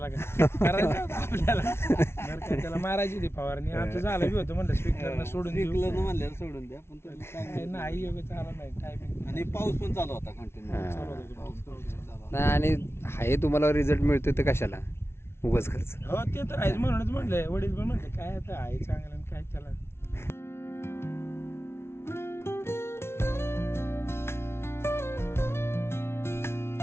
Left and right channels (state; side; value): late; right; 0.12 ms